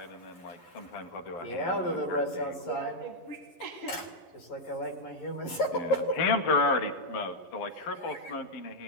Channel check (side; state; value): right; late; 11 ms